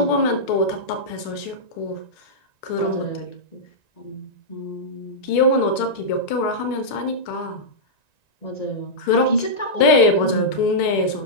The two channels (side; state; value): right; late; 1.9 ms